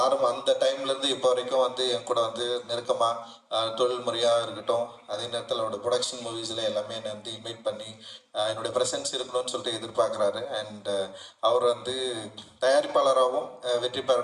அந்த டைம்லேருந்து இப்போ வரைக்கும் வந்து என் கூட வந்து நெருக்கமாக தொழில் முறையாக இருக்கட்டும், அதே நேரத்தில் அவரோட ப்ரொடக்ஷன் மூவிஸில் எல்லாமே என்னை வந்து இன்வைட் பண்ணி என்னுடைய ப்ரெசன்ஸ் இருக்கணும்னு சொல்லிட்டு எதிர்பார்க்குறாரு. அண்ட் அவர் வந்து தயாரிப்பாளராகவும் வெற்றி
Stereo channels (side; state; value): both; identical; correlation 1.00